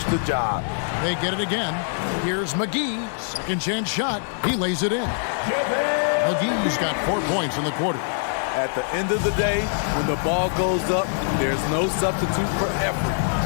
the job. They get it again. Here's McGee. Second chance shot. He lays it in. McGee's got 4 points in the quarter. At the end of the day, when the ball goes up, there's no substitute for effort.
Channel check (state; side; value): silent; right; digital silence